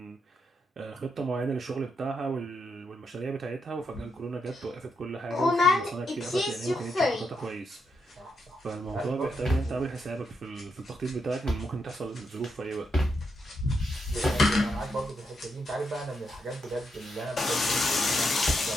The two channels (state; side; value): normal; both; correlation 0.81